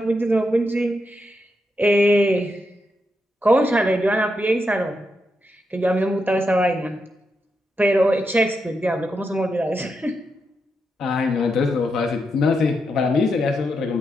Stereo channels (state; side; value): normal; both; correlation 0.84